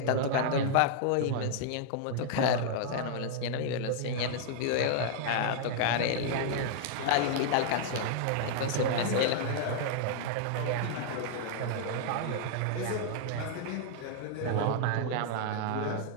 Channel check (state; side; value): different; both; correlation 0.00